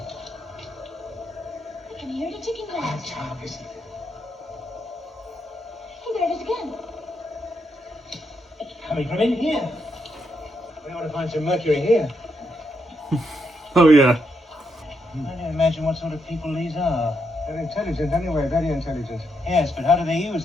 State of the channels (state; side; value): normal; both; correlation 0.80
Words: I can hear the ticking clock. Child, listen. Oh, there it is again. It's coming from in here. We ought to find some mercury here. Oh, yeah. I don't imagine what sort of people these are. They're intelligent anyway, very intelligent. Yes, but how do they use